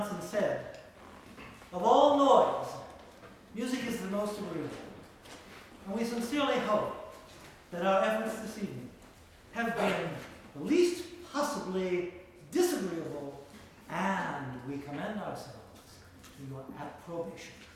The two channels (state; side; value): identical; both; correlation 1.00